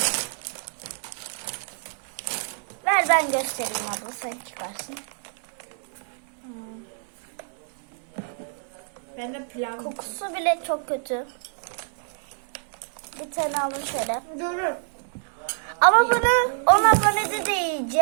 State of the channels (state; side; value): silent; left; digital silence